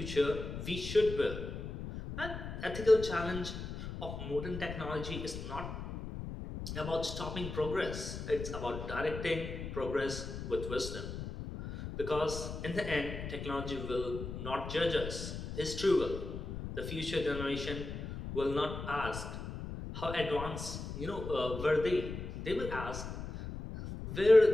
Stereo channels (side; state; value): left; noise; rumble, 7 dB below the sound